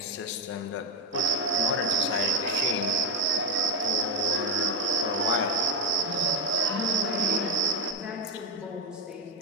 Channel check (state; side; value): normal; both; correlation 0.10